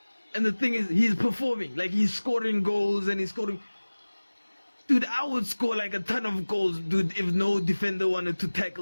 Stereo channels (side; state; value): both; inverted; correlation -1.00